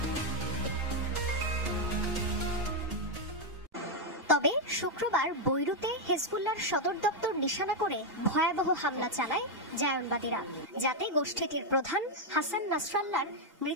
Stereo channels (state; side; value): normal; both; correlation 0.01